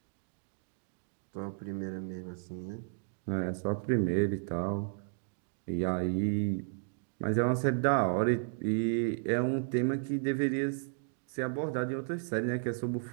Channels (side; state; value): left; silent; digital silence